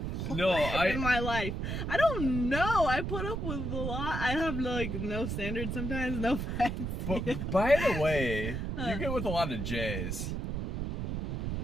in my life? I don't know. I put up with a lot. I have, like, no standards sometimes, no offense. But, by the way, you get with a lot of J's.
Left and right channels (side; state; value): right; noise; rumble, 3 dB below the sound